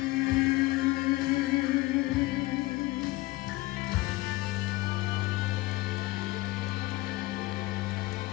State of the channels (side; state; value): right; quieter; 19.8 dB